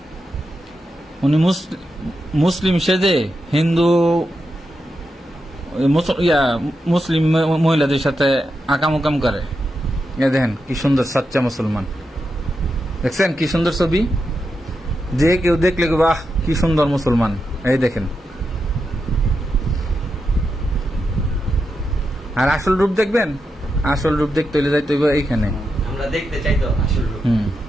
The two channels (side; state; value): both; normal; correlation 0.87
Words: উনি মুসলিম সেজে হিন্দু মুসলিম মহিলাদের সাথে আকাম করে। দেখেন কি সুন্দর সাচ্চা মুসলমান, দেখছেন কি সুন্দর ছবি, যে কেউ দেখলে বাহ কি সুন্দর মুসলমান। এই দেখেন, আর আসল রূপ দেখবেন, আসল রূপ দেখতে হলে যাইতে হইব এইখানে, আমরা দেখতে চাই তো আসল রূপ।